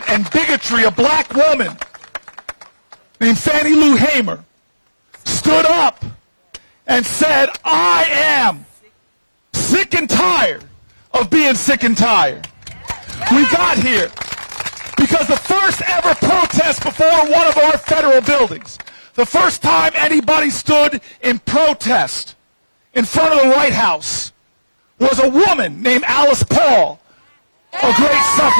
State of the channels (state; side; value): inverted; both; correlation -1.00